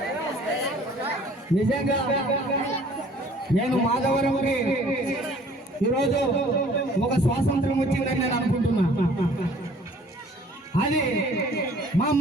నిజంగా నేను మాధవరంకి ఈరోజు ఒక స్వాతంత్రం వచ్చిందని నేను అనుకుంటున్నా. అది మా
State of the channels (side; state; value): both; normal; correlation 0.54